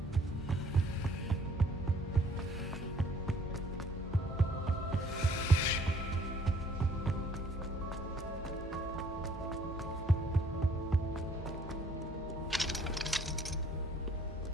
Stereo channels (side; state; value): both; normal; correlation 0.60